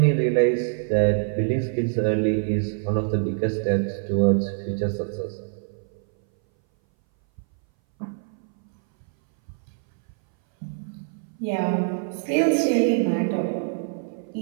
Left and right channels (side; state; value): left; silent; 60 dB below the other